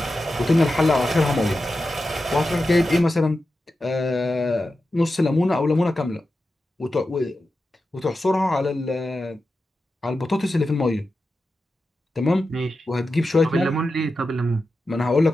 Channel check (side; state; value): both; normal; correlation 0.91